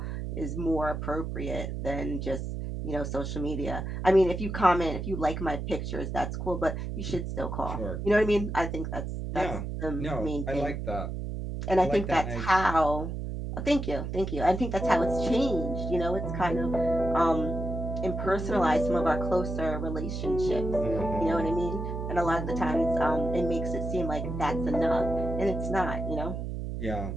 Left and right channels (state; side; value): noise; right; hum, 4 dB below the sound